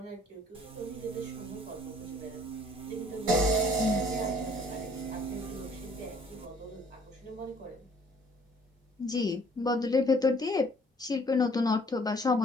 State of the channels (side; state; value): both; normal; correlation 0.58